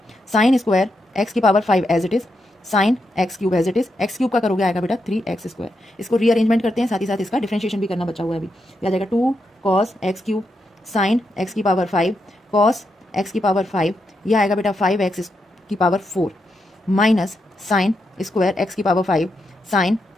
साइन स्क्वायर एक्स की power 5 as it is sine x cube as it is, x cube का करोगे आएगा बेटा 3x स्क्वायर। इसको रीअरेंजमेंट करते हैं, साथ ही साथ इसका डिफरेंशिएशन भी करना बचा हुआ है अभी। आ जाएगा 2 cos x cube sign x की पावर 5 कॉस एक्स की पावर 5, यह आएगा बेटा 5x की power 4 minus sign square x की पावर 5 साइन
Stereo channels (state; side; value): normal; both; correlation 0.84